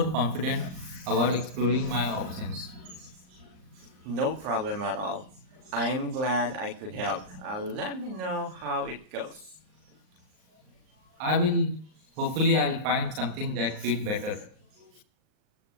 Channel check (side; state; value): left; late; 38 ms